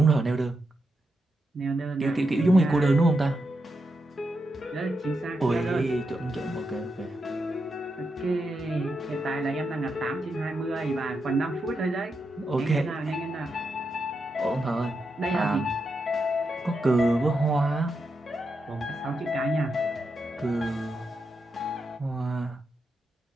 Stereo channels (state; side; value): normal; both; correlation 0.85